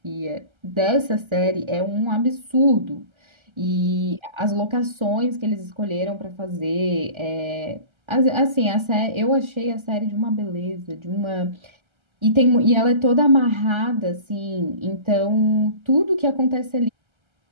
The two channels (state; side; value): late; left; 1.3 ms